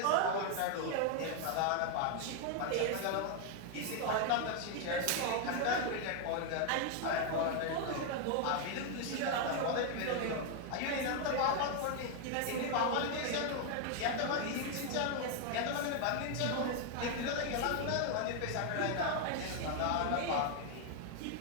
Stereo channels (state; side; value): different; both; correlation 0.00